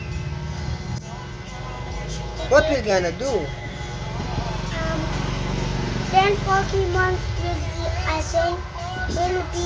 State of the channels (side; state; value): both; identical; correlation 1.00